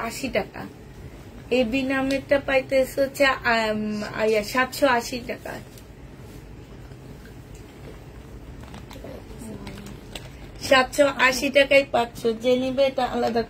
টাকা। এই বিনা মিটটা পাইতেছে হচ্ছে 780 টাকা। 780 টাকায় পাচ্ছ। যে নিবে এটা আলাদা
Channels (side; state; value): both; identical; correlation 1.00